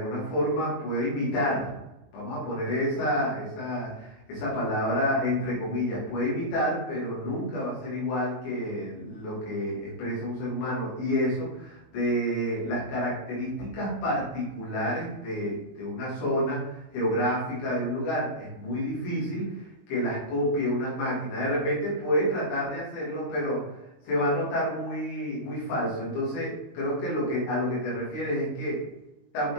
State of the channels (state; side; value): late; right; 21 ms